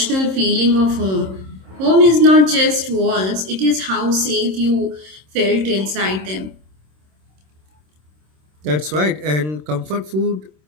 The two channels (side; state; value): left; late; 26 ms